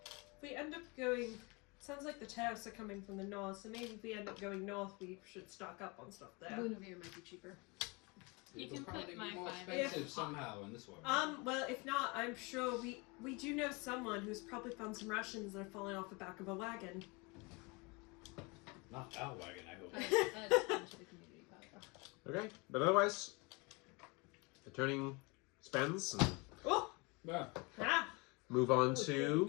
we end up going, sounds like the tariffs are coming from the north, so maybe if we end up going north, we should stock up on stuff there. Lumoria might be cheaper. You It'll can probably put be my more 5 expensive in. somehow in this one. Well, if not, I'm sure we do know someone who's probably found some rations that are falling off the back of a wagon. Not our wagon, I hope. That's into the community pot, though. Okay, but otherwise, returning spends and Oh! Yeah. Ah! move on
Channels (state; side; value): quieter; right; 28.0 dB